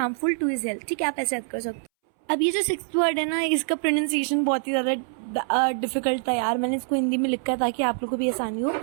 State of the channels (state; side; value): silent; left; 62 dB below the other